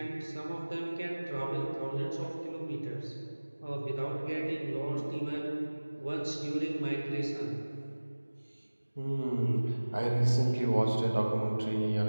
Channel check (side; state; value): both; inverted; correlation -1.00